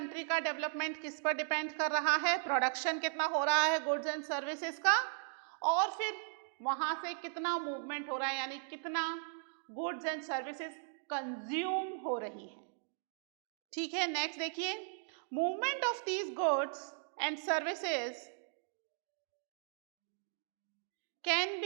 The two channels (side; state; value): left; silent; digital silence